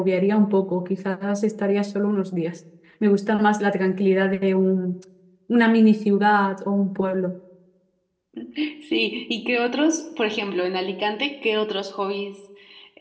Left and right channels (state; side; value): identical; both; correlation 1.00